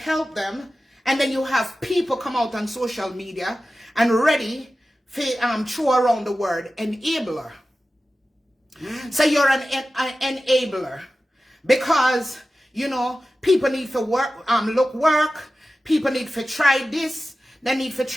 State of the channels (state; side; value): normal; both; correlation 0.94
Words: them. And then you have people come out on social media and ready for throw around the word enabler. So you're an enabler because, you know, people need to work, work. People need to try this. They need to